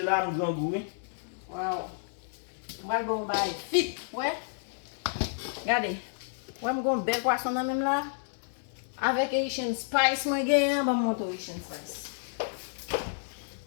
là, nous grand goût. Wow. Moi, bon, bye. Fit, ouais. Regardez. Ouais, je vais bel poisson dans même là. Avec Asian spice, moi, je vais monter Asian spice.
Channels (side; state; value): right; silent; digital silence